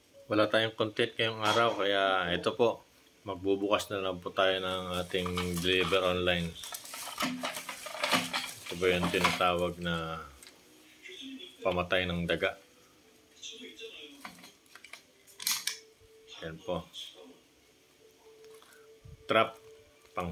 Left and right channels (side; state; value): both; identical; correlation 1.00